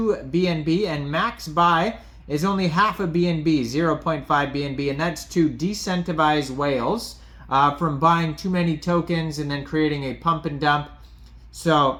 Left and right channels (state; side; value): identical; both; correlation 1.00